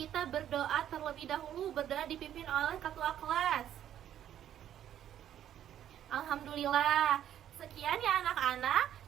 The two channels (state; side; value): quieter; left; 10.8 dB